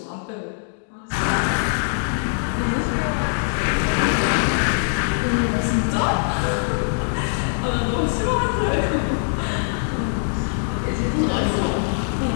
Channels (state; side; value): silent; right; digital silence